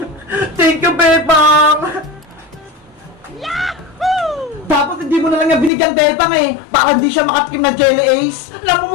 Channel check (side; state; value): right; drops out; at 5.7 s